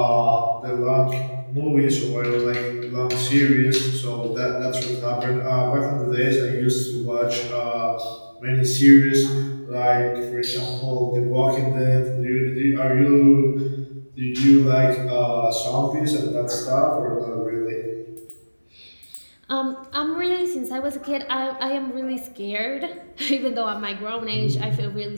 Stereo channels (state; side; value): inverted; both; correlation -1.00